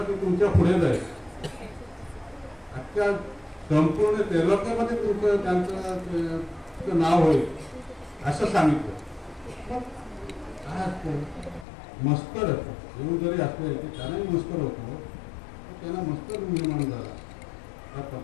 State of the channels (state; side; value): drops out; right; at 11.7 s